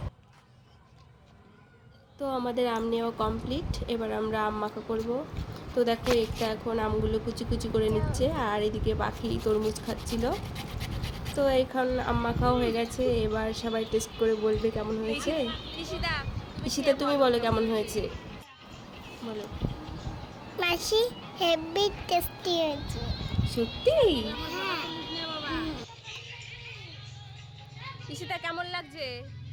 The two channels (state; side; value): identical; both; correlation 1.00